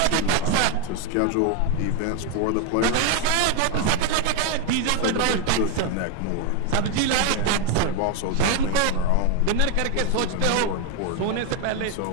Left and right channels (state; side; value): different; both; correlation 0.02